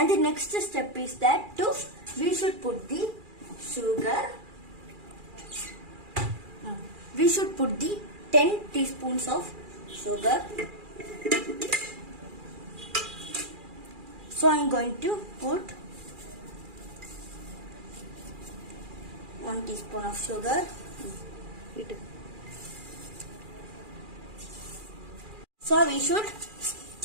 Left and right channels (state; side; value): late; left; 2.4 ms